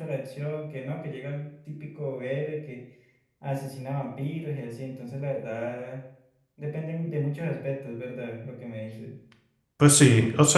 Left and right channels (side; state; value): both; identical; correlation 1.00